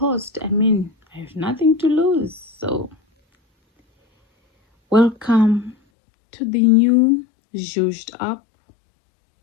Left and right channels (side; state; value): right; drops out; at 5.8 s